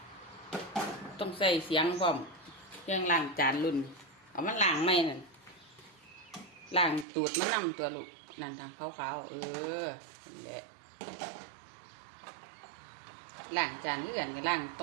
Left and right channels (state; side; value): drops out; left; at 7.1 s